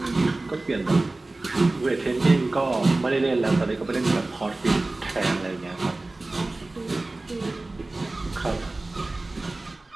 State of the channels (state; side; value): quieter; left; 3.0 dB